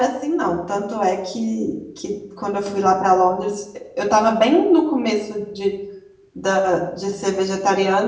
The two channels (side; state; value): both; identical; correlation 1.00